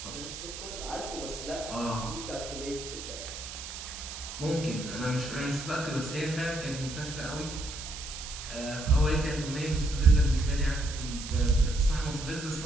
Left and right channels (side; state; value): right; noise; hiss, 10 dB below the sound